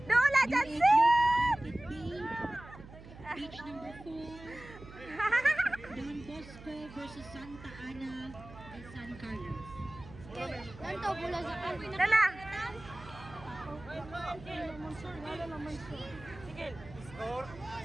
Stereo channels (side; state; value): right; noise; hum, 17 dB below the sound